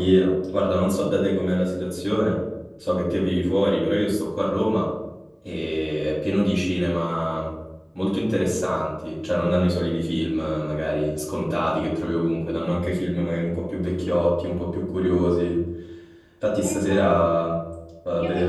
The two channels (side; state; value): both; identical; correlation 1.00